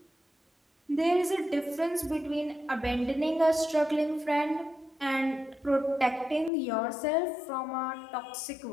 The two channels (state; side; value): drops out; right; at 6.5 s